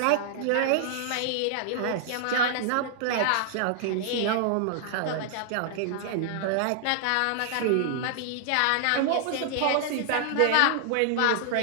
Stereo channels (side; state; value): both; different; correlation -0.01